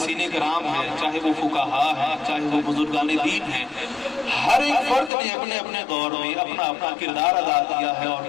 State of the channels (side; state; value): right; drops out; at 5.1 s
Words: کرام ہیں، چاہے وہ فقہاء ہیں، چاہے وہ بزرگان دین ہیں، ہر ایک فرد نے اپنے اپنے دور میں اپنا اپنا کردار ادا کیا ہے اور